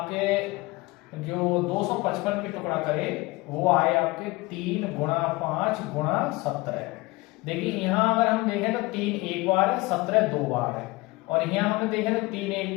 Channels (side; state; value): right; quieter; 22.2 dB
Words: जो 255 के टुकड़ा करे वो आए आपके 3 गुणा 5 गुणा 17। देखिए यहाँ अगर हम देखें तो 3 एक बार है, 17 दो बार है, और यहाँ हमें देखें तो 3 एक